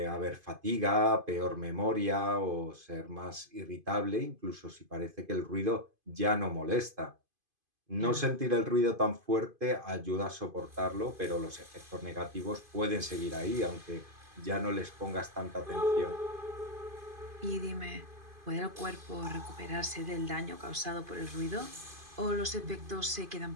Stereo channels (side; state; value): left; late; 2.5 ms